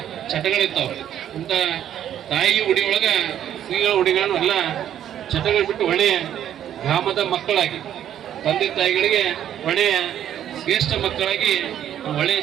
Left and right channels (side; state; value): left; quieter; 10.6 dB